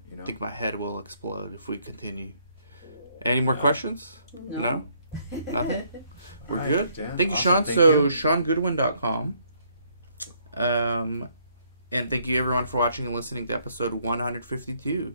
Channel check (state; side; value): inverted; both; correlation -0.69